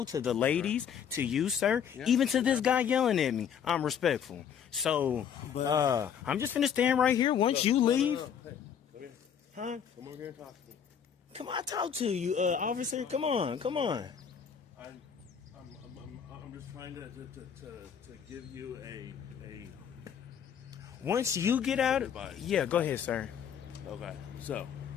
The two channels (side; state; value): right; quieter; 8.0 dB